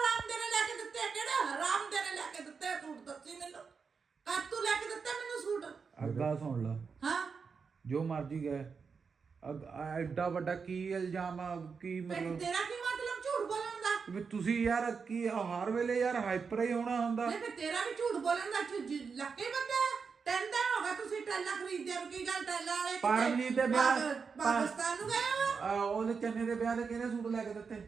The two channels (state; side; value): quieter; left; 5.5 dB